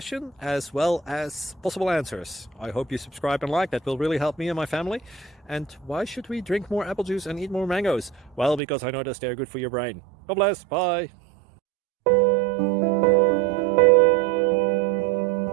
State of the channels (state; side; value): drops out; left; at 8.6 s